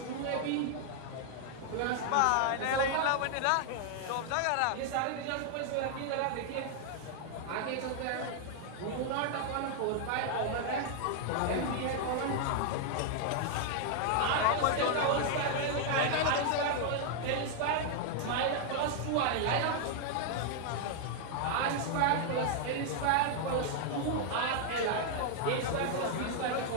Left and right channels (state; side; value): different; both; correlation 0.00